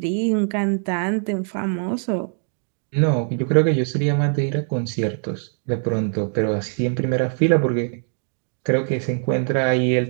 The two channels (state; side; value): silent; left; 56 dB below the other